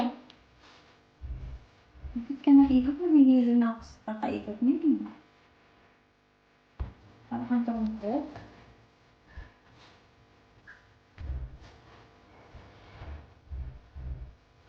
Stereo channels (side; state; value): both; identical; correlation 1.00